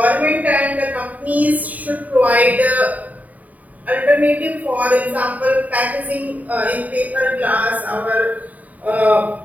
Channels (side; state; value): left; late; 0.073 ms